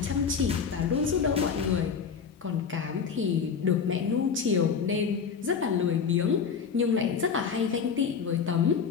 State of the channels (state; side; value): quieter; right; 6.3 dB